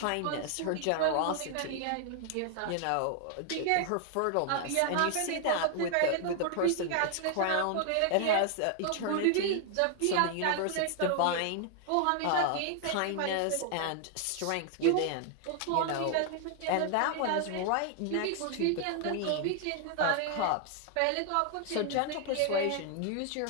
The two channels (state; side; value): different; both; correlation 0.00